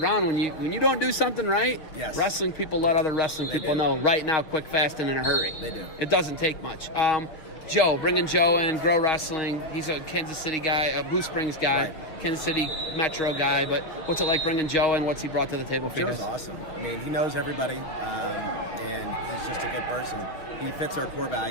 when you don't do something right. Yes. Wrestling people let other wrestling people know right now, quick, fast, and in a hurry. They do. It doesn't take much. Joe, bringing Joe in, Grow Wrestling. He's a Kansas City guy, a Blue Springs guy, Kansas City Metro guy. But what's it like bringing Joe in? What's he brought to the table for you? Joe's awesome. I mean, he knows everybody, and he's just a good person. He fits our core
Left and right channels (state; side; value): late; right; 6.5 ms